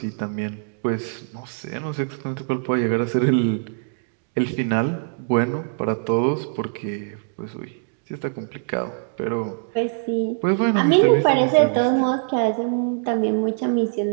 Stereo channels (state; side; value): silent; left; digital silence